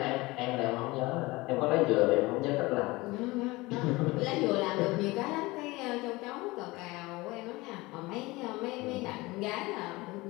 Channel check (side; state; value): right; quieter; 21.7 dB